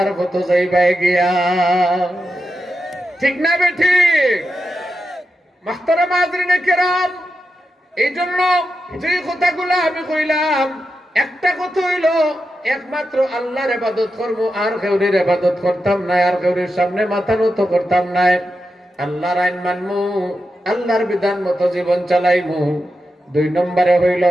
মতো যাইবাই গিয়া। ঠিক না বে ঠিক? মাহতারাম হাজরিনে কেরাম, এই জন্য যে কথাগুলো আমি কইলাম, একটা কথা হইল একমাত্র আল্লাহর ইবাদত করবো, আর কেউরির ইবাদত করতাম না, আর কেউরির সামনে মাথা নত করতাম না। আল্লাহর আইন মানমু, আল্লাহর বিধান মতো জীবন চালাইমু। 2 নম্বরে হইল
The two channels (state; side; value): normal; both; correlation 0.88